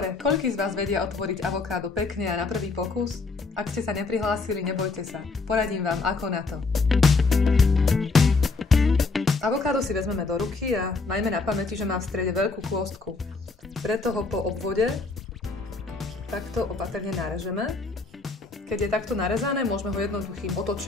koľký z vás vedia otvoriť avokádo pekne a na prvý pokus? Ak ste sa neprihlásili, nebojte sa. Poradím vám, ako na to. Avokádo si vezmeme do ruky a majme na pamäti, že má v strede veľkú kôstku. Preto ho po obvode takto opatrne narežeme. Keď je takto narezané, môžeme ho jednoduchým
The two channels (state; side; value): quieter; right; 3.9 dB